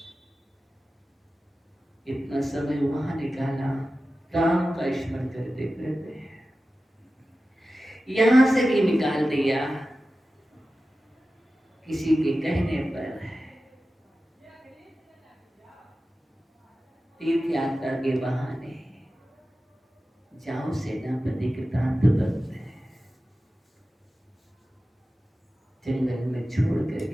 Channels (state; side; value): normal; both; correlation 0.94